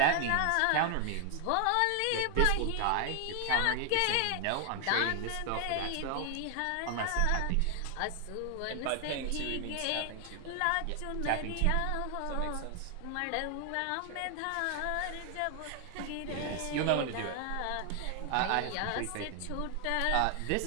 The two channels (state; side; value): different; both; correlation 0.00